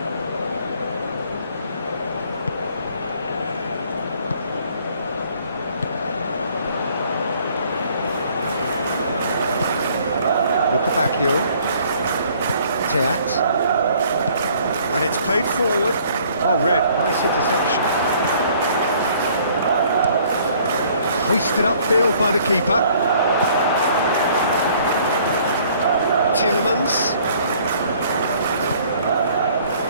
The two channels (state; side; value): inverted; both; correlation -0.59